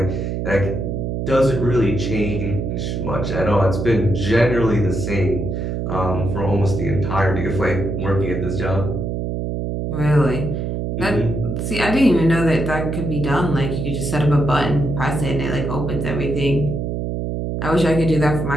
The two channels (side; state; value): right; noise; hum, 2 dB below the sound